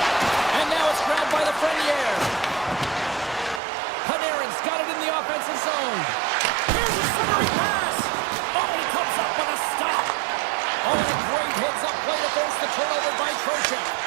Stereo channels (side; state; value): left; drops out; at 3.6 s